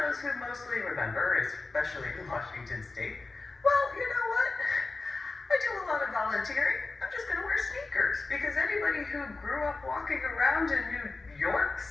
who mostly remember, especially in Washington State, well, you know what? I do a lot of volunteering. I'm just going to wear sneakers. Because anybody who grew up walking around in New York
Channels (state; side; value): quieter; right; 3.6 dB